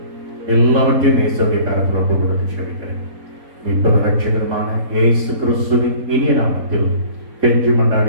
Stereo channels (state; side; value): late; left; 3.7 ms